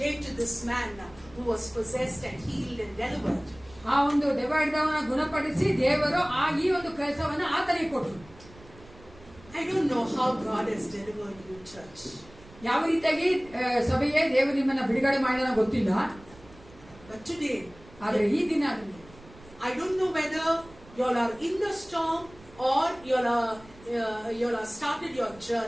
to this man who was possessed and healed and delivered. ಆ ಒಂದು ದೆವ್ವಹಿಡಿದವನ ಗುಣಪಡಿಸಿ ದೇವರು ಈ ಒಂದು ಕೆಲಸವನ್ನ ಆತನಿಗೆ ಕೊಟ್ಟರು. I don't know how God has delivered you, church. ಯಾವ ರೀತಿಯಾಗಿ ಸಭೆಯೇ ದೇವರು ನಿಮ್ಮನ್ನ ಬಿಡುಗಡೆ ಮಾಡಿದ ಗೊತ್ತಿಲ್ಲ. But today, ಆದ್ರೆ ಈ ದಿನ I don't know whether you all are in the storm or you all are started your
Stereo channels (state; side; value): noise; right; rumble, 22 dB below the sound